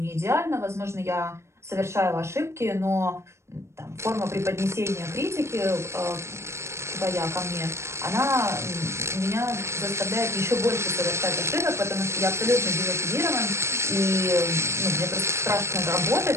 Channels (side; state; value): left; late; 0.13 ms